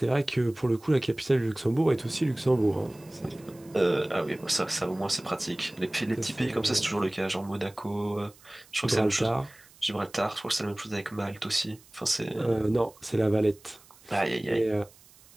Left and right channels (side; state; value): right; noise; hiss, 26 dB below the sound